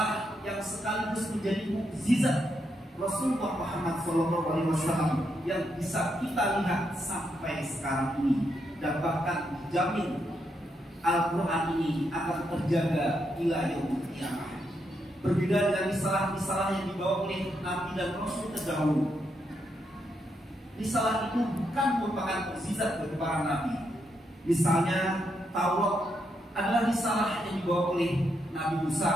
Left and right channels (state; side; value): normal; both; correlation 0.80